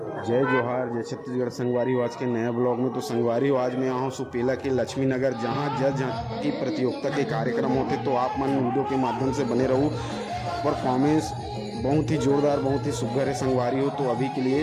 जय जोहार, जय छत्तीसगढ़। संगवारी हो आज के नए ब्लॉग में। तो संगवारी हो आज मैं यहाँ हूँ सुपेला के लक्ष्मी नगर, जहाँ जल झांकी प्रतियोगिता के कार्यक्रम होते। तो आप मन वीडियो के माध्यम से बने रहो। परफॉर्मेंस बहुत ही जोरदार, बहुत ही सुघर है संगवारी हो। तो अभी के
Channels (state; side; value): identical; both; correlation 1.00